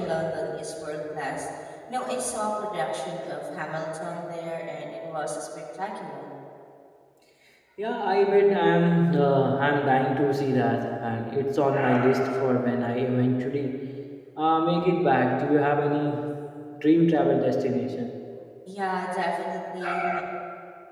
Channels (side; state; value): both; identical; correlation 1.00